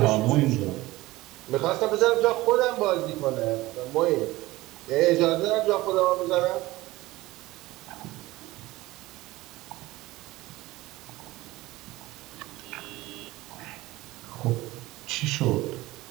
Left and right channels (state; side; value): quieter; left; 18.8 dB